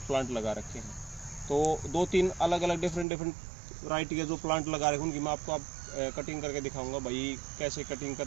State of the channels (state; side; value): drops out; left; at 3.1 s